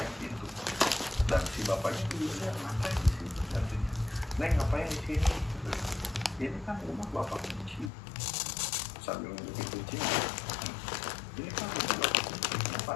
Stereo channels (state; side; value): drops out; right; at 7.9 s